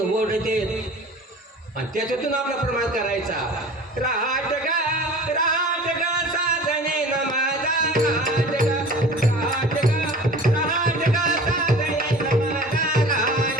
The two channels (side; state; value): both; normal; correlation 0.42